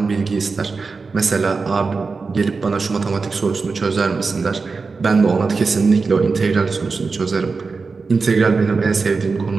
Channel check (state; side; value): quieter; left; 4.4 dB